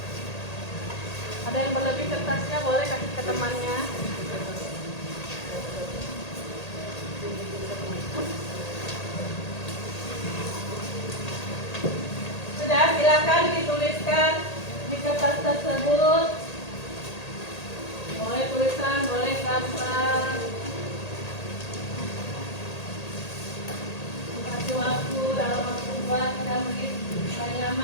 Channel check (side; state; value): right; late; 1.8 ms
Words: Ada yang berlebih kertasnya boleh kasih ke temannya. Sudah, silakan dituliskan di kertas tersebut. Boleh tulisan, boleh gambar. Kasih waktu dalam waktu buat 3 menit, paling